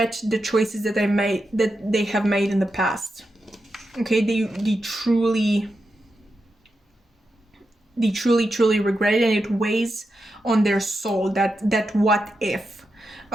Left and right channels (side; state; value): both; normal; correlation 0.88